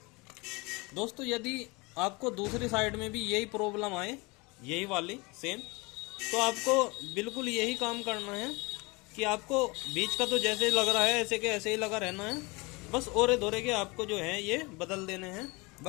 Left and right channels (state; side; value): quieter; right; 26.3 dB